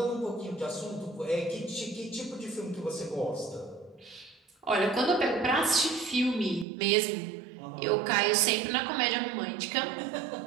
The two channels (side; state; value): left; drops out; at 6.7 s